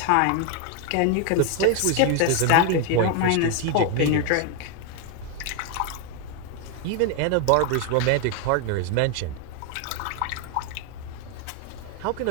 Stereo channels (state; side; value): different; both; correlation 0.01